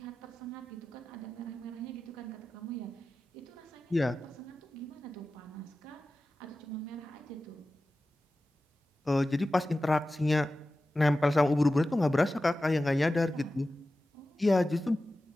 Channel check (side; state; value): both; normal; correlation 0.94